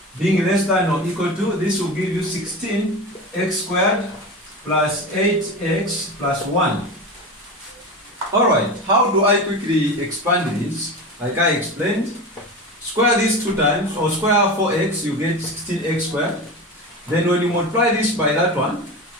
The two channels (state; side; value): normal; both; correlation 0.27